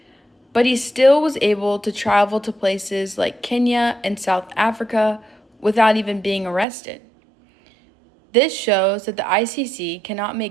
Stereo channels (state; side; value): drops out; left; at 6.7 s